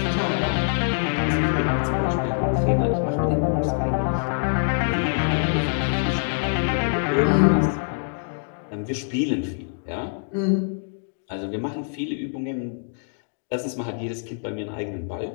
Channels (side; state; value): right; silent; digital silence